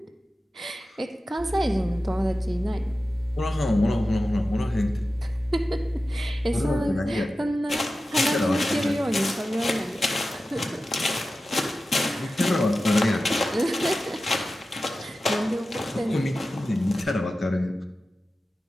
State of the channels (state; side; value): normal; both; correlation 0.94